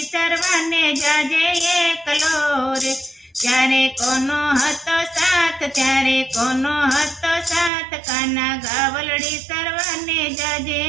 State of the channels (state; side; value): drops out; left; at 7.7 s